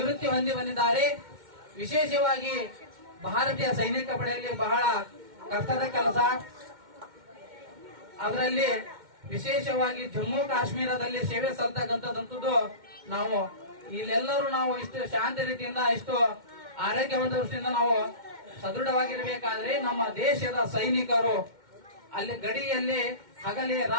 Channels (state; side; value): late; left; 2.1 ms